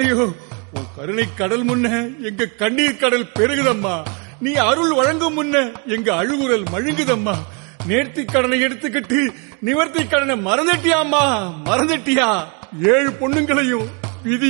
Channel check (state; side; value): quieter; left; 34.1 dB